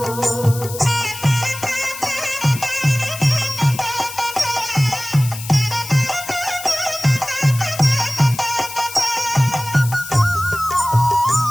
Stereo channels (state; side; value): noise; left; hiss, 11 dB below the sound